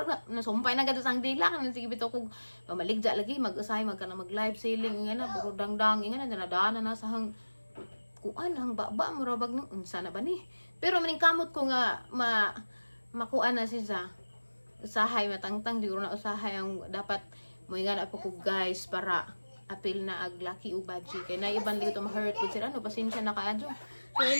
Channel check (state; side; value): inverted; both; correlation -1.00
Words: na nasumpay na gadto sang dila kan sige bitaw kog mamaligja lagi mag-usay magkana mag live selling nga na puro dangdang nga na nadana na sa hang kuan hang baba mo rabag nang unsa na ba ni pero maning kamot ko nga makuan na siya usahay matangtang di na usahay ang dapat mo nga na po ko guys para apil na ag laki u budget kay na iban dito ma-hurt ko sila no pasensya na kaadyo. So